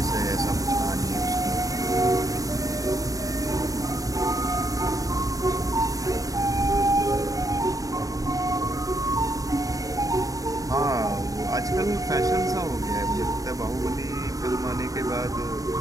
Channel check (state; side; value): late; left; 0.17 ms